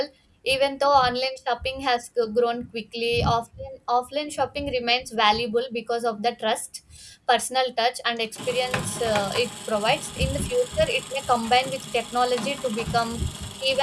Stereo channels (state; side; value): identical; both; correlation 1.00